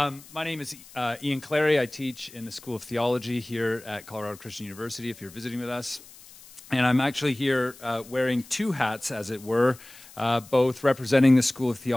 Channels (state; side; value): noise; left; hiss, 21 dB below the sound